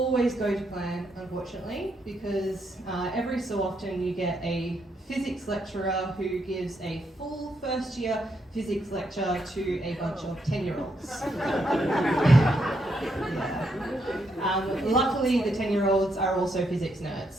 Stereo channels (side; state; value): both; normal; correlation 0.77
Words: go to plan, unfortunately, because every so often you get a physics lecturer who gives a full first year physics lecture to a bunch of 10-year-olds. Yeah. Luckily, the 10-year-olds are also physics